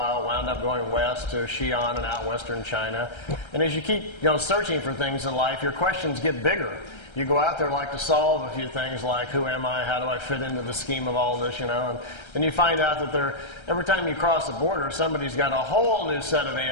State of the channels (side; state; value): right; late; 1.3 ms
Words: wound up going west to Xi'an and out western China. And as you keep searching for things in life, your questions get bigger. You go out there like to solve a few things like, who am I, how do I fit into the scheme of all this, and then you find out that every time you cross the border, somebody's got a whole new set of